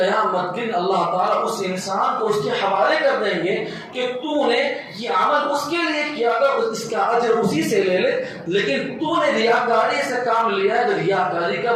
دن اللہ تعالیٰ اس انسان کو اس کے حوالے کر دیں گے کہ تو نے یہ عمل اس کے لیے کیا تھا، اس کا اجر اسی سے لے لے، لیکن تو نے ریاکاری سے کام لیا ہے تو ریاکاری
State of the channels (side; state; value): both; identical; correlation 1.00